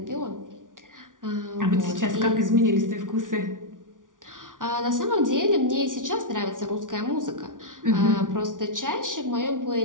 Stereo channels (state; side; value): late; left; 0.88 ms